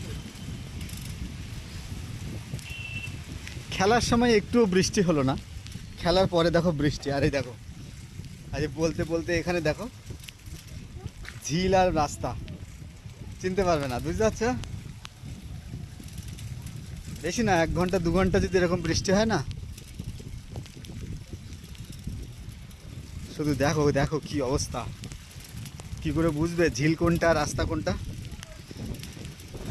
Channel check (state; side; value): identical; both; correlation 1.00